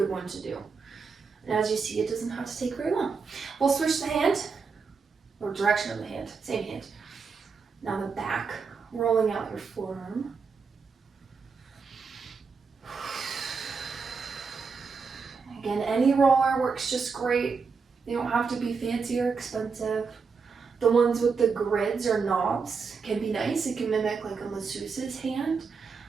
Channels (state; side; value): quieter; left; 5.2 dB